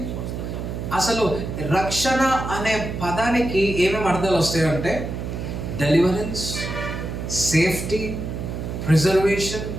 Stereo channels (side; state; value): right; noise; hum, 5 dB below the sound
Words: అసలు రక్షణ అనే పదానికి ఏమేమి అర్థాలు వస్తాయంటే deliverance, safety, preservation,